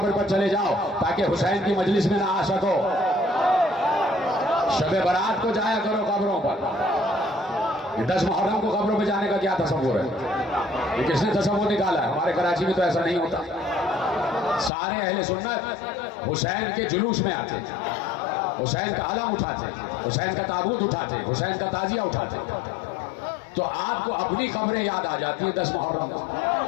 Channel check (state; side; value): drops out; right; at 14.7 s